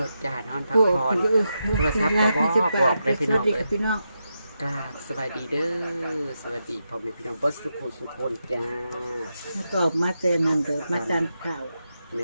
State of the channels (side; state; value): both; inverted; correlation -0.86